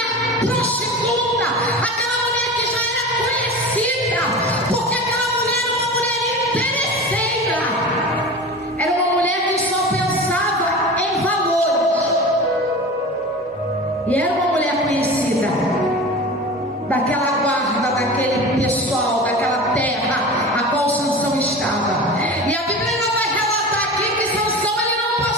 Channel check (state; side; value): normal; both; correlation 0.33